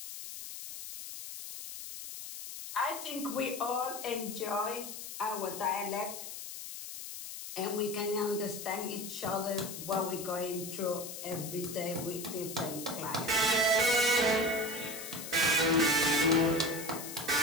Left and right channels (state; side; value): noise; left; hiss, 9 dB below the sound